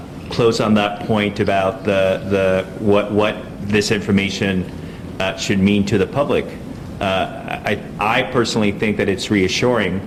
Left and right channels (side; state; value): both; identical; correlation 1.00